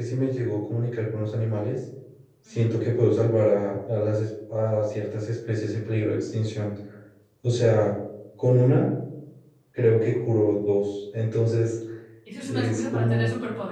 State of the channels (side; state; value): both; identical; correlation 1.00